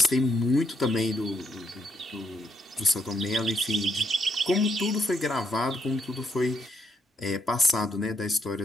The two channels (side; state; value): both; normal; correlation 0.74